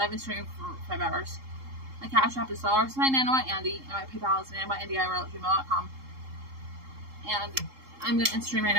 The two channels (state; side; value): late; left; 3.7 ms